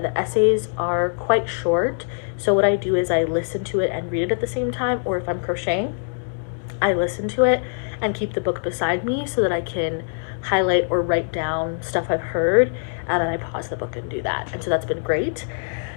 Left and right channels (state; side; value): silent; right; digital silence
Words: The essays are quite short, so what I do is I listen to it and read it at the same time, or if I'm crocheting, I listen to it and keep the book beside me so that I can highlight or write down stuff I've heard, and then I pause the book and do that. And so that's been great.